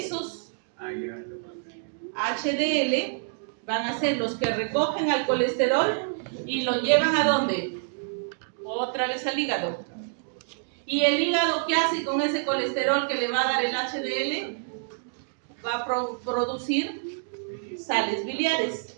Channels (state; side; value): silent; left; digital silence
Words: HDL van a ser los que recogen al colesterol y lo llevan ¿a dónde? Otra vez al hígado. ¿Y el hígado qué hace con ese colesterol que le va a dar el HDL? Va a producir sales biliares.